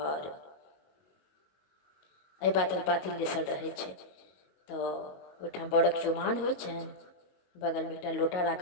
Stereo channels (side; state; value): right; late; 22 ms